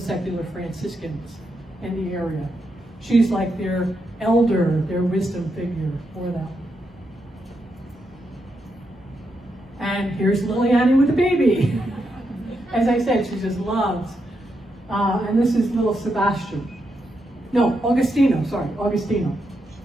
Franciscans in the area. She's like their elder, their wisdom figure for them. And here's Liliani with a baby. As I said, she just loves. And this is little Sebastian. No, Augustino, sorry, Augustino.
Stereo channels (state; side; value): normal; both; correlation 0.83